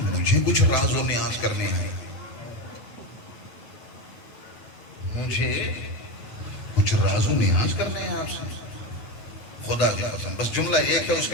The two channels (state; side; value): late; right; 8.6 ms